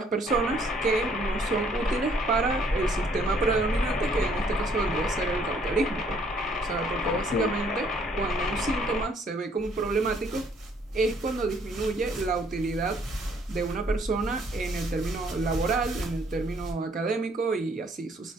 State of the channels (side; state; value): both; normal; correlation 0.63